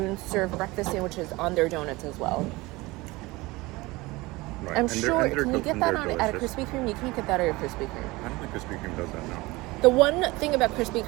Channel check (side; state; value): left; quieter; 21.7 dB